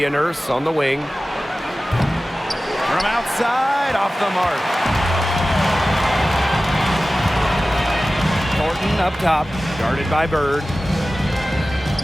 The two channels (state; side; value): normal; both; correlation 0.96